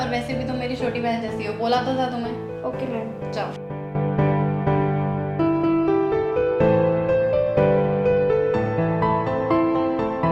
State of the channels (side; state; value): both; identical; correlation 1.00